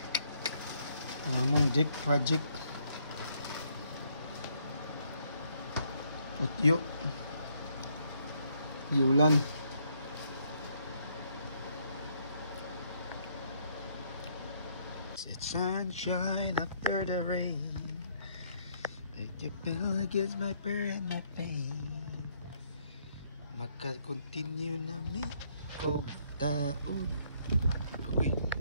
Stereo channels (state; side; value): inverted; both; correlation -0.70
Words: Among deck project. Utyo. Giulan. It's sunshine after the rain. Make you feel against my prayer and my pain. Maka-continue na mi o taon. Agoy.